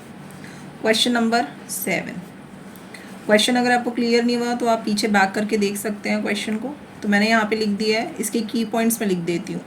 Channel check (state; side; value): identical; both; correlation 1.00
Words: Question number 7। क्वेश्चन अगर आपको क्लियर नहीं हुआ तो आप पीछे बैक करके देख सकते हैं क्वेश्चन को। तो मैंने यहाँ पे लिख दिया है, इसके की पॉइंट्स में लिख देती हूँ।